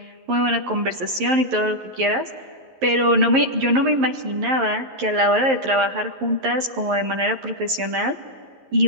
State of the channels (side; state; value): left; late; 11 ms